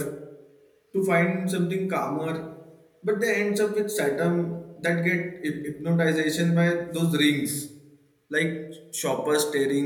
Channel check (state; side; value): identical; both; correlation 1.00